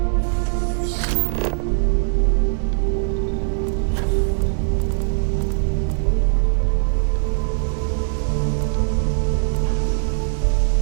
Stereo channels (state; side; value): silent; left; digital silence